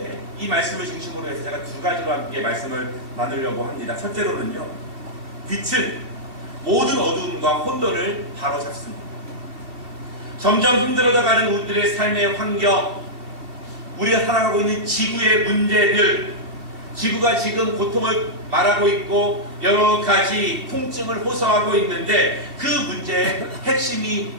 이 말씀을 중심으로 해서 제가 두 가지로 함께 말씀을 나누려고 합니다. 첫째로는요, 빛은 모든 어두움과 혼돈을 바로잡습니다. 점점 힘들어져가는 우리들의 삶의 환경, 우리가 살아가고 있는 지구의 문제들, 지구가 지금 고통을 말하고 있고 여러 가지 통증을 호소하고 있는데 그 문제의 핵심이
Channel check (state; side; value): late; left; 2.6 ms